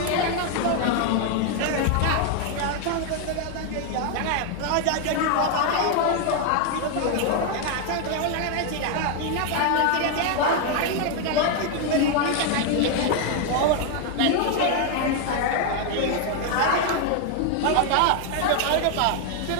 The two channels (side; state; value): both; different; correlation 0.01